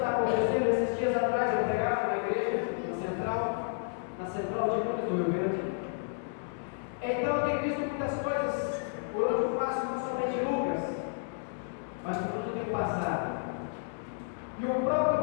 acontecendo. Esses dias atrás eu pregava na igreja, na central de Lucas do Rio Grande. Então eu tenho visto muitas coisas por onde eu passo, não somente Lucas, mas por onde eu tenho passado. E o próprio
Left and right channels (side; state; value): right; silent; digital silence